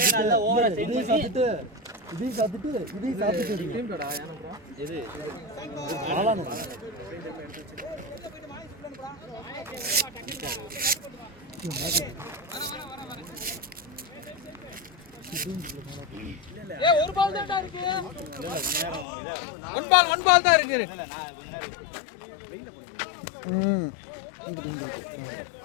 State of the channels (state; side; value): drops out; right; at 19.1 s